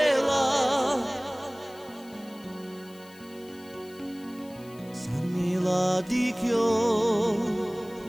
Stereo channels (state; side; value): noise; left; hiss, 24 dB below the sound